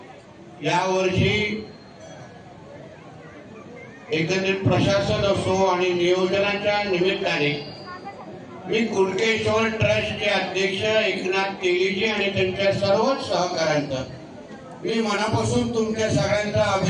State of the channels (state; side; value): identical; both; correlation 1.00